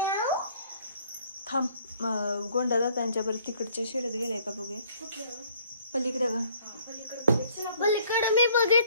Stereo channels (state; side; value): inverted; both; correlation -0.60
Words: थांब गोंडा दादांच्या परत तिकडच्या शेडत गेलाय का बघूया. कुठलं पलीकडे ग. पलीकडे मी